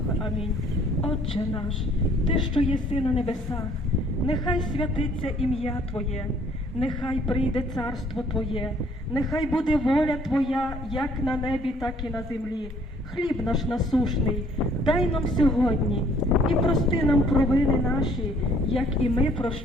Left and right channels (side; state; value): both; normal; correlation 0.60